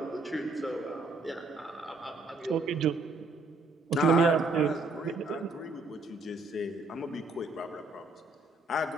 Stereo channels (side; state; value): left; quieter; 3.2 dB